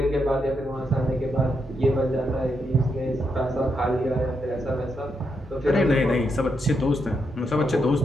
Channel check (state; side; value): normal; both; correlation 0.82